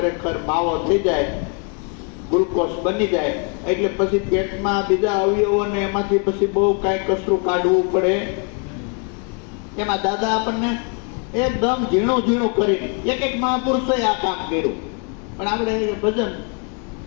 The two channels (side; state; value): right; quieter; 37.0 dB